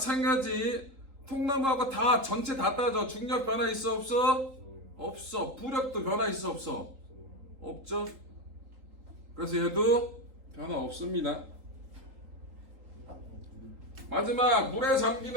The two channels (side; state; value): left; late; 3.8 ms